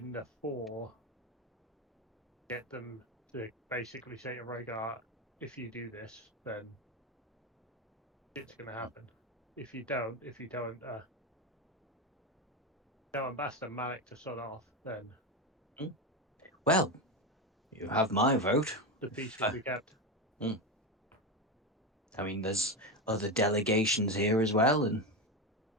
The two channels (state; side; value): normal; both; correlation 0.16